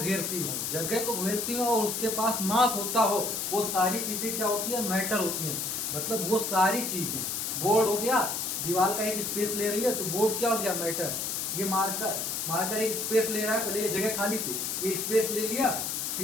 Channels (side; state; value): left; noise; hiss, 2 dB below the sound